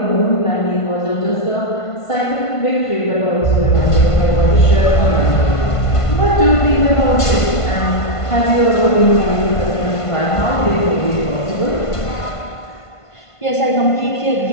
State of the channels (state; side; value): late; right; 1.5 ms